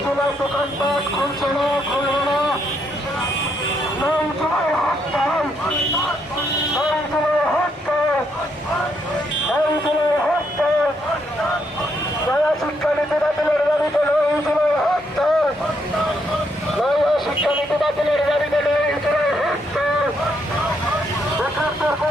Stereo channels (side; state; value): both; normal; correlation 0.75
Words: দোকানপাট খুলছে না, খুলবে না, নয় জুলাই হরতাল, নয় জুলাই হরতাল, নয় জুলাই হরতাল, নয়া শিক্ষানীতি বাতিলের দাবিতে নয় জুলাই হরতাল, নয়া শিক্ষানীতি বাতিলের দাবিতে নয় জুলাই হরতাল, বেকারদের